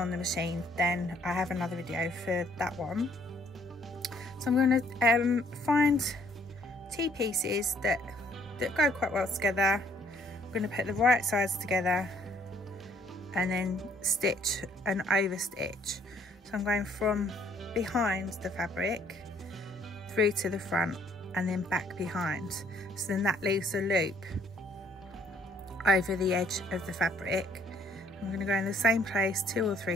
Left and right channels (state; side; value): normal; both; correlation 0.64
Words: the machine, then I have another video for that one. So I'm going to find 2 pieces that go quite well together. I'm going to put the right sides together and then stitch and over stitch. So I'm going from behind the fabric through to the front and then back behind. So then that leaves a loop over the edge of the fabric. I'm going to go in the same place 2 or